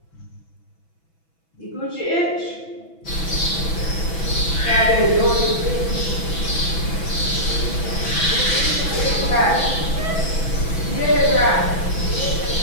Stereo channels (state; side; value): late; right; 6.1 ms